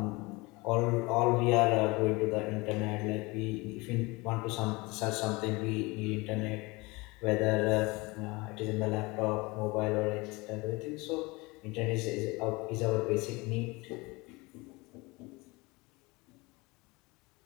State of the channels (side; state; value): right; quieter; 24.5 dB